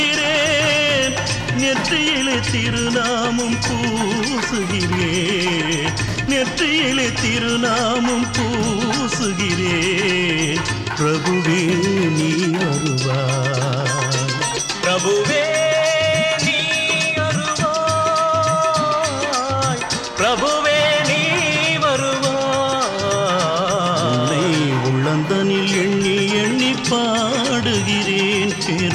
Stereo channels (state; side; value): identical; both; correlation 1.00